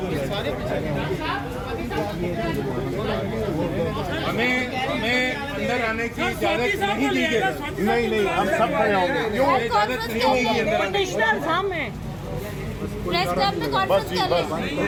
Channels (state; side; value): identical; both; correlation 1.00